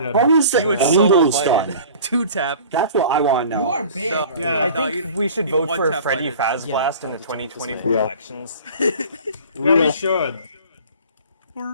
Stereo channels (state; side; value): inverted; both; correlation -0.43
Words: How is the He would solo angles fight done? it. Two tap. That's what I want to You know. are big. No, Yeah. I no, think you- we should you vote for one-tap Freddy fight it. Faz Yeah, Blast in the that's 2024 Yeah. elections. Real. should.